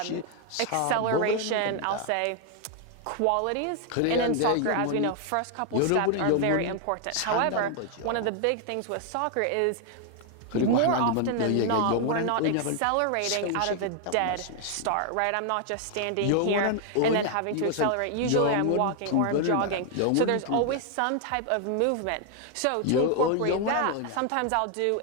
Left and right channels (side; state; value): both; different; correlation 0.00